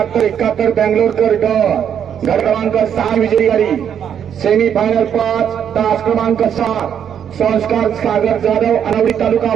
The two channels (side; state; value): left; quieter; 8.6 dB